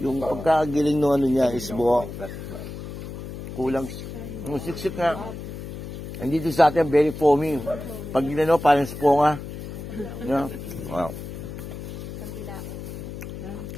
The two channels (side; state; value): left; noise; hum, 9 dB below the sound